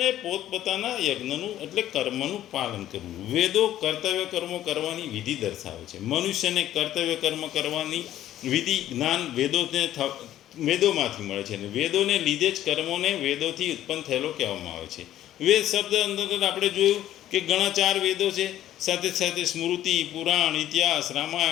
પોતપોતાના યજ્ઞનું એટલે કર્મનું પાલન કરવું. વેદો કર્તવ્ય કર્મો કરવાની વિધિ દર્શાવે છે. મનુષ્યને કર્તવ્ય કર્મ કરવાની વિધિ જ્ઞાન વેદોમાંથી મળે છે, અને વેદોને લીધે જ કર્મોને વેદોથી ઉત્પન્ન થયેલો કહેવામાં આવે છે. વેદ શબ્દ અંતર્ગત આપણે જોયું કે ઘણા 4 વેદો છે, સાથે સાથે સ્મૃતિ, પુરાણ, ઇતિહાસ,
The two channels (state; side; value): quieter; right; 12.7 dB